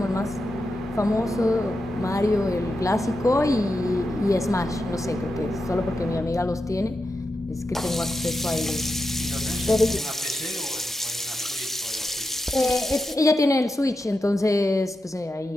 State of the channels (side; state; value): both; normal; correlation 0.88